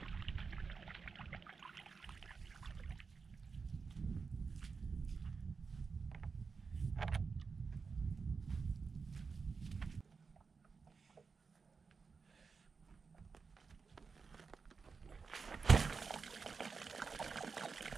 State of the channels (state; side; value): quieter; left; 5.0 dB